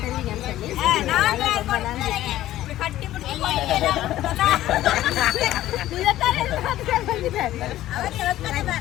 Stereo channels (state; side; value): quieter; right; 14.2 dB